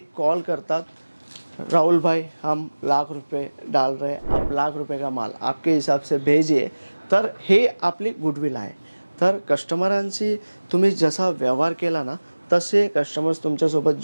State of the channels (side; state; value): both; inverted; correlation -1.00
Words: कॉल करतात, राहुल भाई हम ₹1,00,000 डाल रहे, आप ₹1,00,000 का माल आपके हिसाब से भेजिए। तर हे आपली गुडविल आहे। तर कस्टमरांशी तुम्ही जसा व्यवहार केला ना, तसे कस्टमर्स तुमच्यासोबत